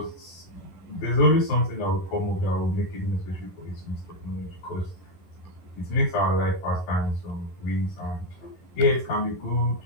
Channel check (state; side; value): late; right; 11 ms